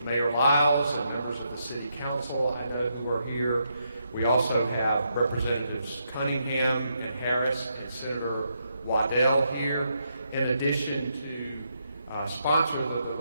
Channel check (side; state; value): both; inverted; correlation -0.79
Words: Mayor Lyles and members of the City Council I know who are here. We also have Representatives Cunningham and Harris and Senator Waddell here, in addition to sponsors of the